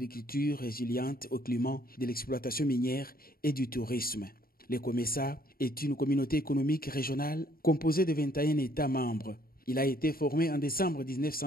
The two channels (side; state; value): right; late; 0.43 ms